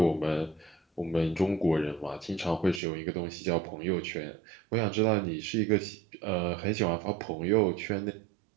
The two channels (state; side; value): drops out; left; at 2.8 s